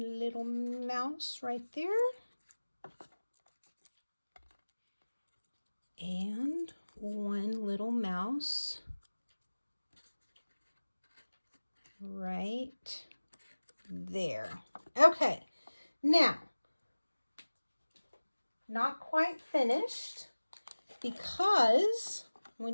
little mouse right there. And one little mouse right there. Okay, now, not quite finished because we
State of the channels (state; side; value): inverted; both; correlation -1.00